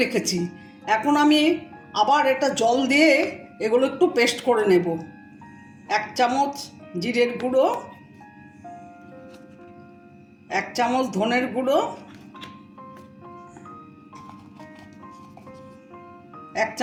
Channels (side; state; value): both; identical; correlation 1.00